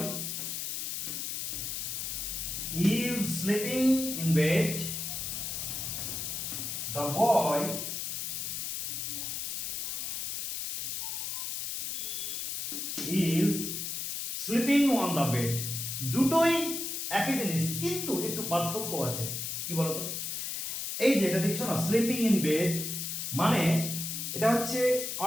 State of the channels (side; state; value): left; noise; hiss, 3 dB below the sound